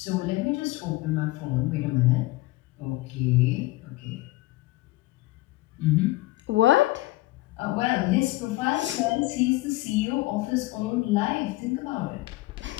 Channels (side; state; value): right; quieter; 18.9 dB